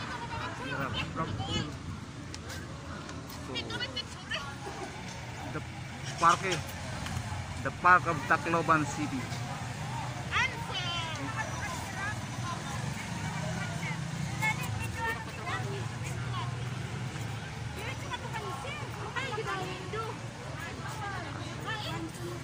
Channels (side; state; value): both; identical; correlation 1.00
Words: So, the park of Tacloban City.